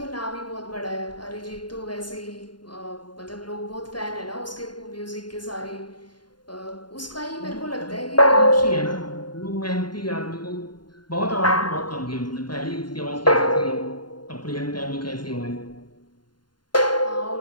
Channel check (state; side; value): late; right; 0.71 ms